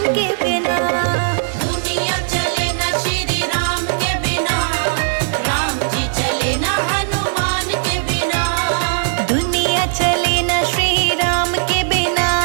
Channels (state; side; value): silent; left; digital silence